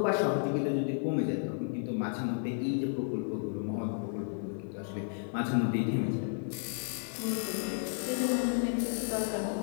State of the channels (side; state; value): right; silent; 56 dB below the other